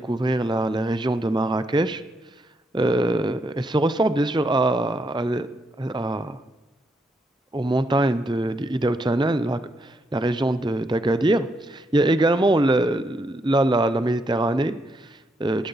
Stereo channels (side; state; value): both; normal; correlation 0.77